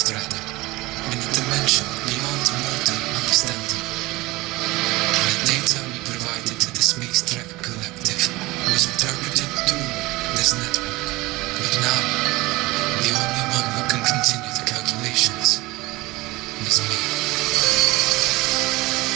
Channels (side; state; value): left; quieter; 20.7 dB